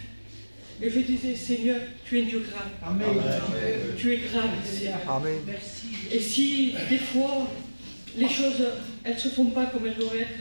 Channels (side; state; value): both; inverted; correlation -1.00